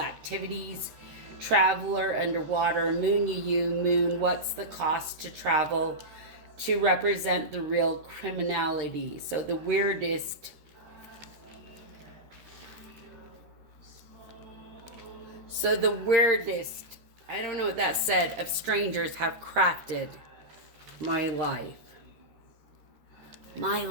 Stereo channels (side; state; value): left; late; 13 ms